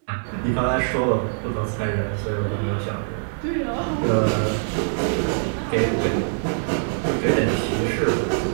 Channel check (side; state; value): left; silent; digital silence